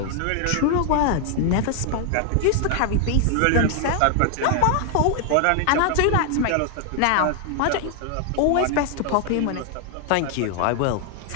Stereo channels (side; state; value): both; different; correlation 0.00